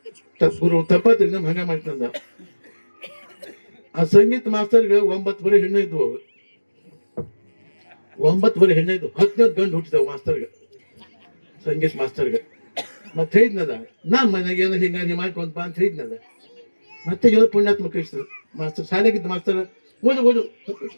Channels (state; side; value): inverted; both; correlation -1.00